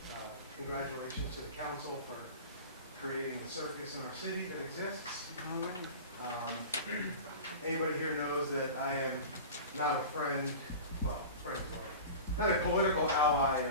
congratulations to the council for creating the circus in our city that exists. Anybody here knows that I am not a friend, well, not a political ally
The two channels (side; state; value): both; inverted; correlation -0.34